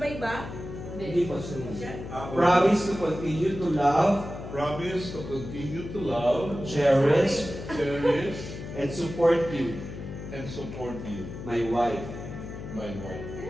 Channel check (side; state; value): left; noise; hum, 10 dB below the sound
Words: ba? Hindi po sunod. Promise to continue to love. Promise to continue to love, Cherish. And support you. And support you. My wife. My wife.